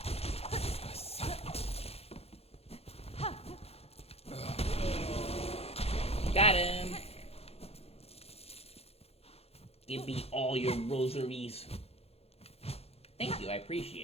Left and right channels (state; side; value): late; right; 0.29 ms